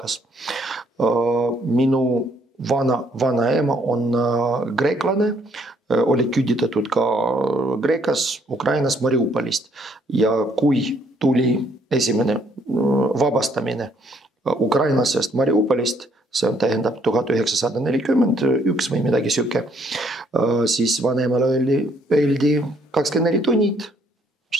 Minu vanaema on greeklane, oli küüditatud ka Kreekas, Ukrainas, Mariupolist. Ja kui tuli esimene vabastamine ukrainlasest Mariupolist, see on tähendab 1941 või midagi siuke, siis vanemale öeldi 24 tunnid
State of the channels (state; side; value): normal; both; correlation 0.67